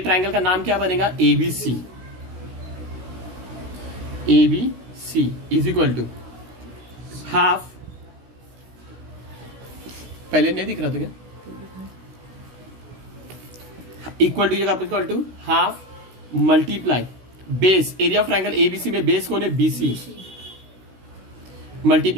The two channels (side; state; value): left; late; 16 ms